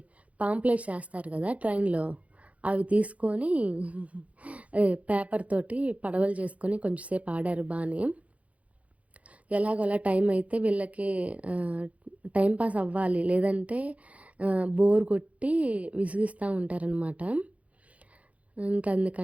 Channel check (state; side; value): late; left; 0.066 ms